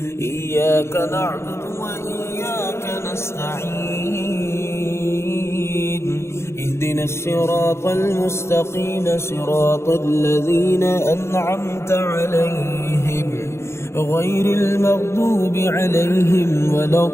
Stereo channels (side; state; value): right; late; 0.13 ms